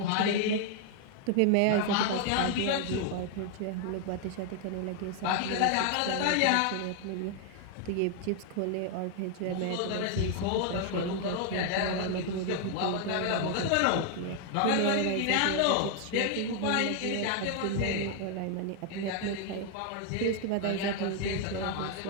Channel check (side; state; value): both; different; correlation 0.00